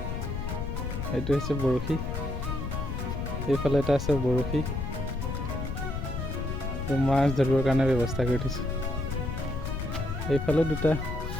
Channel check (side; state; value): left; noise; rumble, 4 dB below the sound